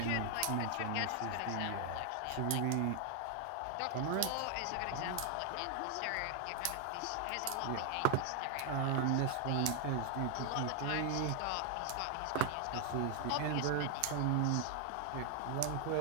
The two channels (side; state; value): both; different; correlation 0.00